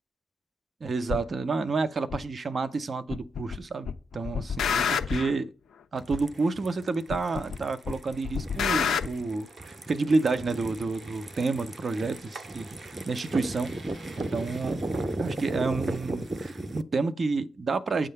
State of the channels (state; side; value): normal; both; correlation 0.84